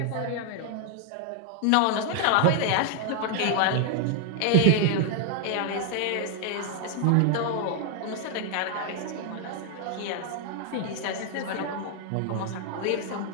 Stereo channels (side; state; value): both; different; correlation 0.00